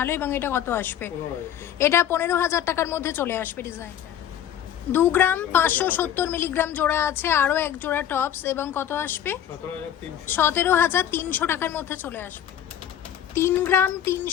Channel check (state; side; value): quieter; right; 10.3 dB